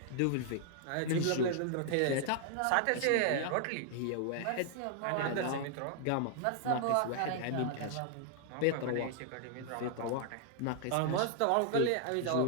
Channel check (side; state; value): both; different; correlation -0.01